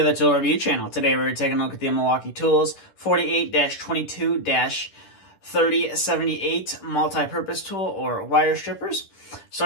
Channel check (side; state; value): right; late; 10 ms